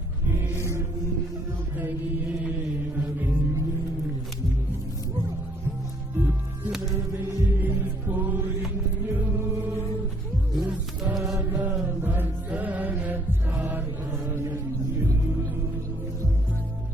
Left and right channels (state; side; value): normal; both; correlation 0.66